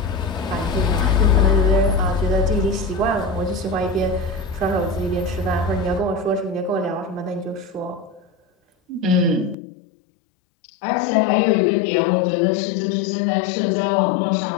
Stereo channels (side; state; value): right; drops out; at 9.6 s